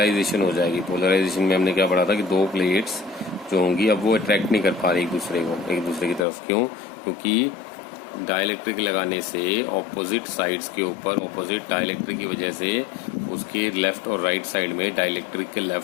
हो जाएगी। पोलराइजेशन में हमने क्या पढ़ा था कि दो प्लेट्स जो होंगी अब वो अट्रैक्ट नहीं कर पा रही एक दूसरे की तरफ। क्यों? क्योंकि डाइलेक्ट्रिक लगाने से ऑपोजिट साइड्स के ऊपर ऑपोजिट डाइलेक्ट्रिक की वजह से उसके लेफ्ट और राइट साइड में, डाइलेक्ट्रिक के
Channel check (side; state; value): right; drops out; at 6.2 s